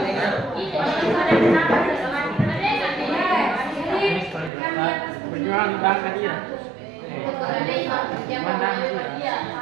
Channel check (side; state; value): left; drops out; at 4.5 s